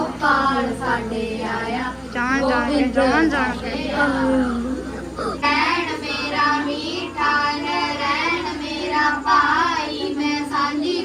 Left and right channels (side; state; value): both; identical; correlation 1.00